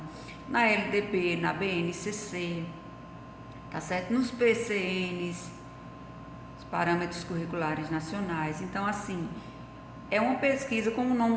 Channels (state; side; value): identical; both; correlation 1.00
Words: na LDB, na BNCC, tá certo? Nos PCNs, Parâmetros Curriculares Nacionais. Então, assim, é uma pesquisa, como o